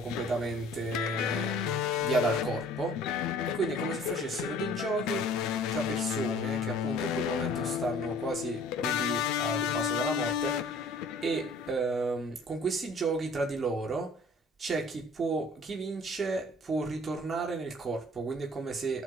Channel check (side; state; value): both; normal; correlation 0.51